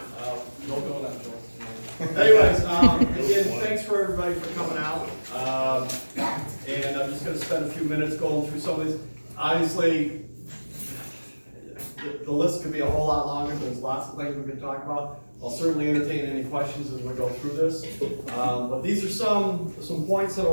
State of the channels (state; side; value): inverted; both; correlation -1.00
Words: No going on, Joel. Anyways, again, thanks for everybody for coming out. And I'm just gonna spend a few minutes going through some of these. Obviously, the list could be a whole lot longer. There's lots of things we can talk about. I'll certainly entertain any questions as we go through this. But these are some points that I